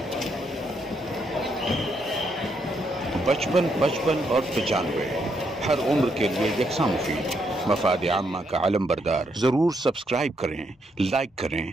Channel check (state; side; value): normal; both; correlation 0.77